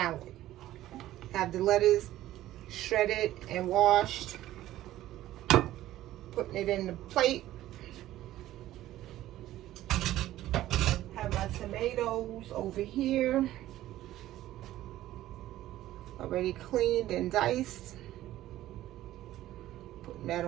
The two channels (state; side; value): quieter; left; 14.4 dB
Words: Have the lettuce shredded and washed, putting it in the plate. Have my tomatoes over here, already cleaned and diced. Putting that